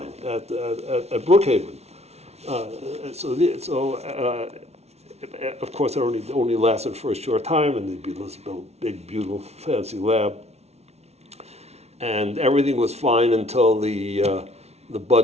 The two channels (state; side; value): late; left; 0.31 ms